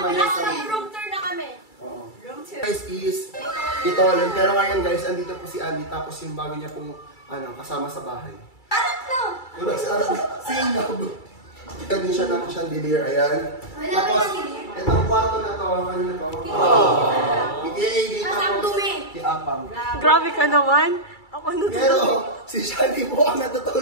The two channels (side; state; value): right; late; 2.3 ms